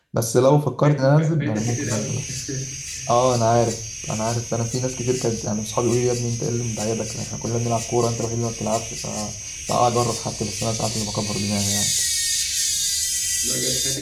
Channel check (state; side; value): identical; both; correlation 1.00